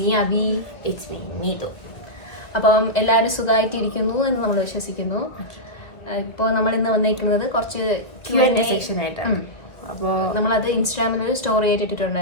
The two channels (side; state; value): right; late; 2.0 ms